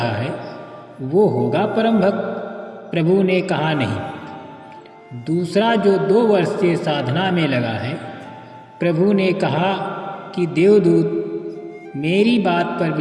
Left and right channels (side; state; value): both; identical; correlation 1.00